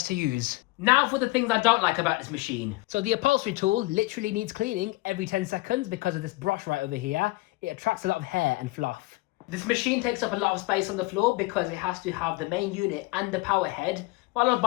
to use. Now for the things I don't like about this machine. So the upholstery tool literally needs cleaning every 10 seconds because of this brush right over here. It attracts a lot of hair and fluff. This machine takes up a lot of space on the floor because it has to have the main unit and the power head, followed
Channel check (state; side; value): quieter; right; 21.5 dB